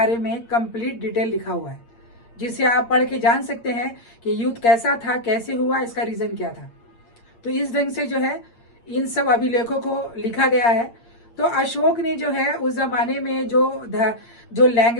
में कंप्लीट डिटेल लिखा हुआ है, जिसे आप पढ़ के जान सकते हैं कि युद्ध कैसा था, कैसे हुआ, इसका रीजन क्या था। तो इस ढंग से जो है इन सब अभिलेखों को लिखा गया है। तो अशोक ने जो है उस जमाने में जो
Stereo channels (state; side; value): late; right; 8.6 ms